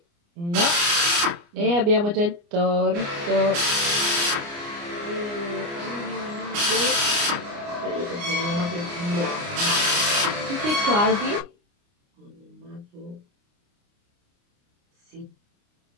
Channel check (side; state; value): left; late; 29 ms